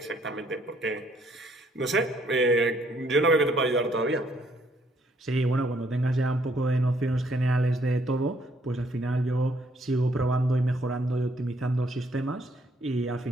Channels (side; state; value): both; normal; correlation 0.67